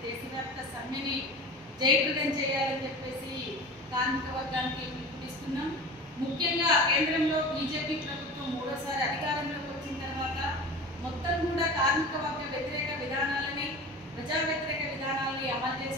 దేశవ్యాప్త సమ్మెని జయప్రదం చేయాలని చెప్పేసి కార్మిక వర్గానికి పిలుపునిస్తున్నాం. ముఖ్యంగా కేంద్రంలో బీజేపీ ప్రభుత్వం మూడోసారి అధికారంలోకి వచ్చిన తర్వాత మొత్తం కూడా కార్మిక వర్గ వ్యతిరేక విధానాలని ప్రజా వ్యతిరేక విధానాలని అమలు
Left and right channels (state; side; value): normal; both; correlation 0.34